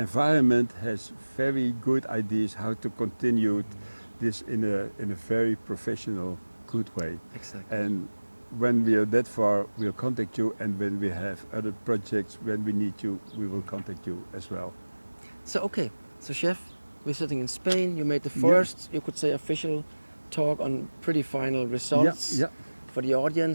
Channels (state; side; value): inverted; both; correlation -1.00